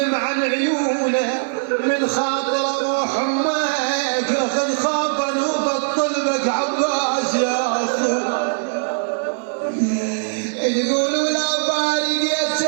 عن عيونه من خاطر روح امك خذ خافا وبطل بك عباس يا اخو تقول ولا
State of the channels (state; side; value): silent; left; digital silence